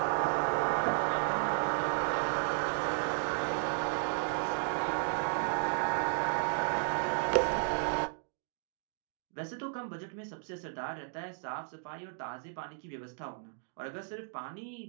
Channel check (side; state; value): left; silent; digital silence